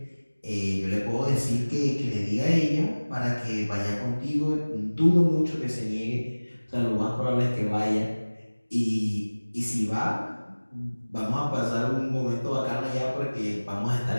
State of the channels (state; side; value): inverted; both; correlation -1.00